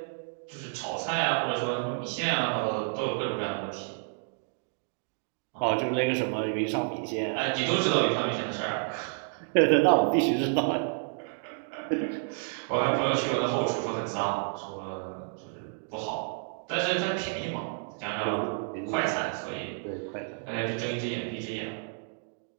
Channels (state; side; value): silent; left; 58 dB below the other